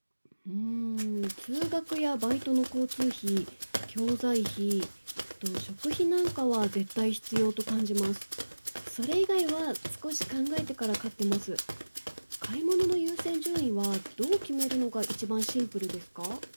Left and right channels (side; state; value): both; inverted; correlation -1.00